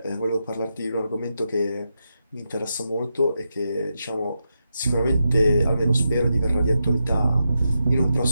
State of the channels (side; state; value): both; inverted; correlation -0.86